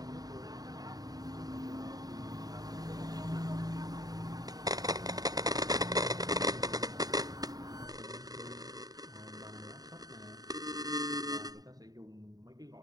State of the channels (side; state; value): left; late; 0.18 ms